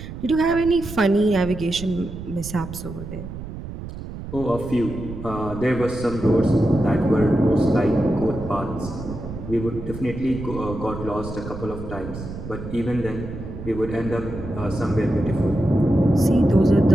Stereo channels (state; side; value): noise; right; rumble, 10 dB below the sound